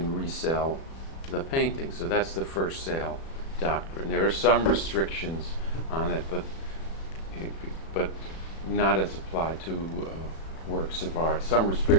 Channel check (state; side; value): late; right; 36 ms